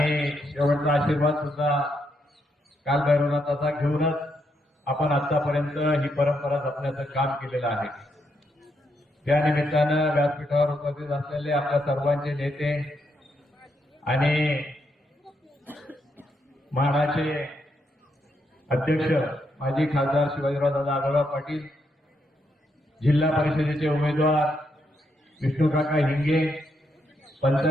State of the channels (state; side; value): normal; both; correlation 0.79